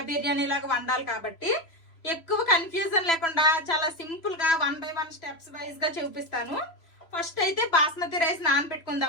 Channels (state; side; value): late; right; 3.0 ms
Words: బిర్యానీ లాగా వండాలి. కాబట్టి ఎక్కువ కన్ఫ్యూజన్ లేకుండా చాలా సింపుల్ గా 1 by 1 స్టెప్స్ వైజ్ గా చూపిస్తాను. ఫస్ట్ అయితే బాస్మతి రైస్